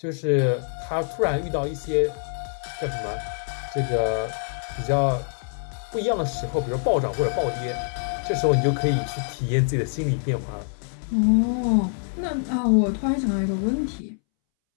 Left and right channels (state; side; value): silent; right; 62 dB below the other